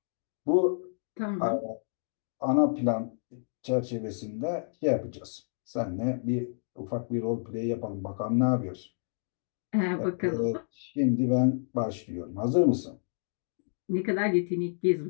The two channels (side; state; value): right; silent; digital silence